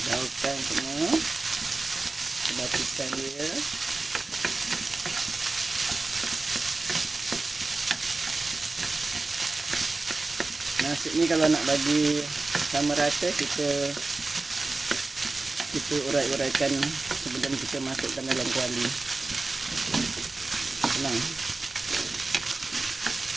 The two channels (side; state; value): left; quieter; 3.5 dB